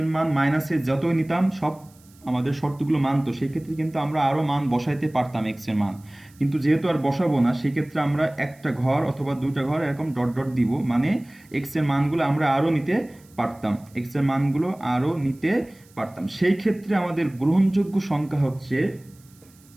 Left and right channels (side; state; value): right; noise; hiss, 29 dB below the sound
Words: মান মাইনাসে যতই নিতাম সব আমাদের শর্তগুলো মানতো, সেক্ষেত্রে কিন্তু আমরা আরও মান বসাইতে পারতাম এক্স এর মান। কিন্তু যেহেতু আর বসাবো না, সেক্ষেত্রে আমরা একটা ঘর অথবা দুইটা ঘর এরকম ডট ডট দিব, মানে এক্স এর মানগুলো আমরা আরও নিতে পারতাম, এক্স এর মানগুলো আরও নিতে পারতাম। সেই ক্ষেত্রে আমাদের গ্রহণযোগ্য সংখ্যা হচ্ছে